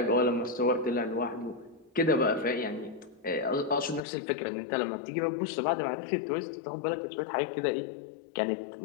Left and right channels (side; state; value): right; drops out; at 4.0 s